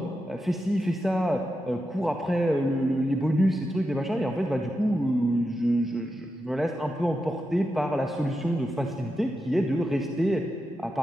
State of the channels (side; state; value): both; normal; correlation 0.88